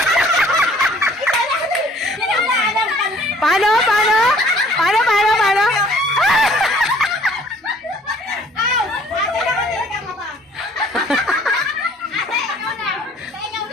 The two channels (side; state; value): both; normal; correlation 0.56